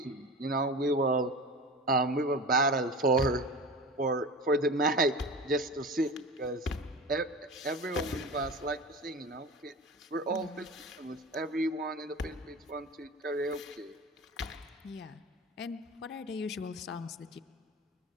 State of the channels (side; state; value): both; normal; correlation 0.32